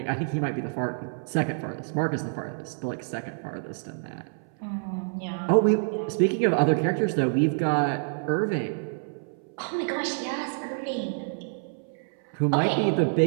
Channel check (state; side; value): silent; left; 60 dB below the other